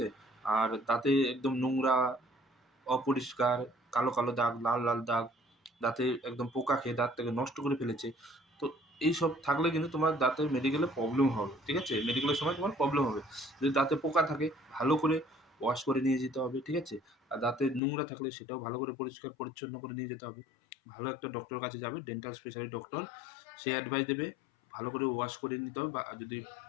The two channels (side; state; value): right; drops out; at 17.8 s